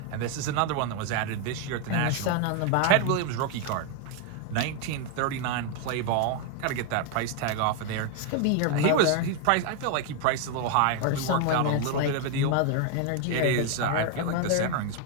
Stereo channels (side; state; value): both; different; correlation 0.01